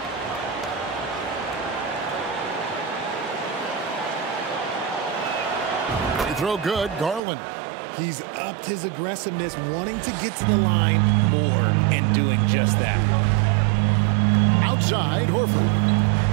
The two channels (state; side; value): drops out; left; at 7.2 s